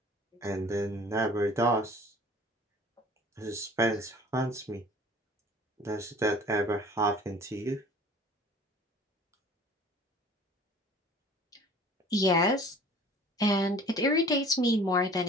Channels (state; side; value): normal; both; correlation 0.47